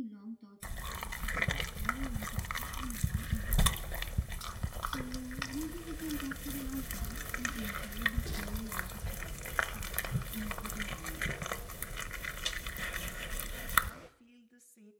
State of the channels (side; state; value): both; identical; correlation 1.00